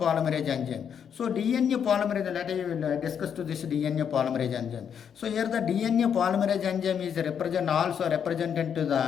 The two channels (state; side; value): quieter; right; 7.9 dB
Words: enzyme. So DNA polymerase, let us discuss to this DNA polymerase enzyme. So here the DNA polymerase enzyme is represented to